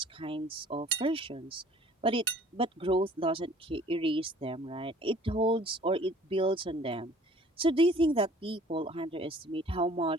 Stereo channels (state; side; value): normal; both; correlation 0.53